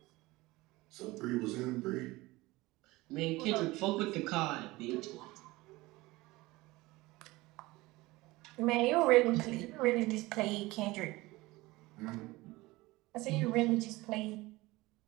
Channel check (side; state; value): left; quieter; 20.5 dB